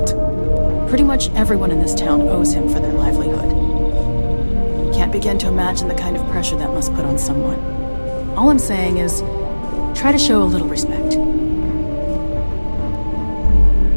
Pretty much everyone in this town owes him for their livelihood. Can't begin to imagine the kind of pressure that must put on someone. All I'm saying is, try to show a little respect.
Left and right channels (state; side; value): inverted; both; correlation -1.00